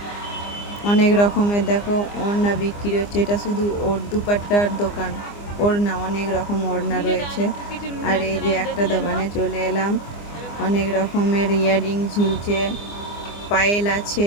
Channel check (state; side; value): late; right; 24 ms